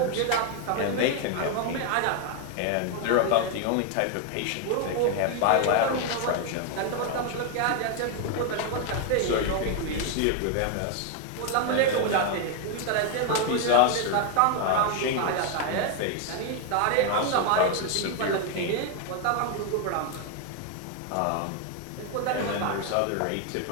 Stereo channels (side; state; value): both; different; correlation 0.01